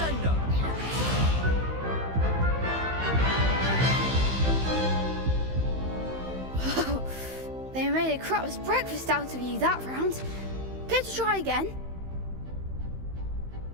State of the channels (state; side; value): late; left; 15 ms